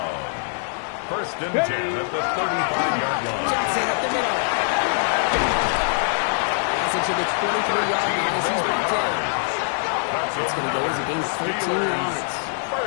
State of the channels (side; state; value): right; silent; digital silence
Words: First and 10 at the 35-yard line. Johnson up the middle. It's into the 23-yard line as he's brought down. It's going to go as a gain of 13 yards.